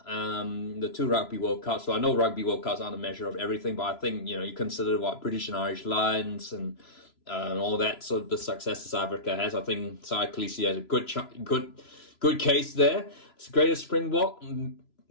The two Rugby World Cups. So I know Rugby World Cups aren't a measure of everything, but I think, you consider what British and Irish Lions and all that, sort of the success that South Africa has. I think Sai Kolisi has a good case there. It's the greatest Springbok.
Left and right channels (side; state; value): right; late; 3.0 ms